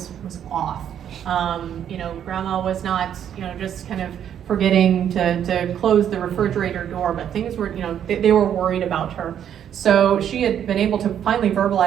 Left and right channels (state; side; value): quieter; left; 9.5 dB